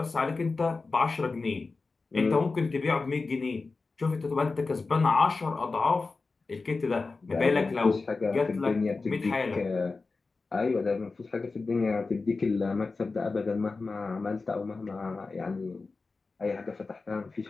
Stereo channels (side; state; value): right; quieter; 4.0 dB